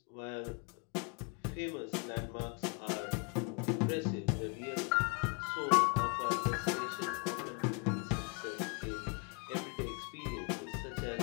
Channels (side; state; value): right; quieter; 33.0 dB